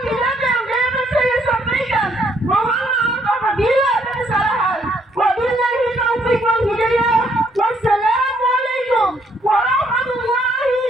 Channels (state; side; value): normal; both; correlation 0.69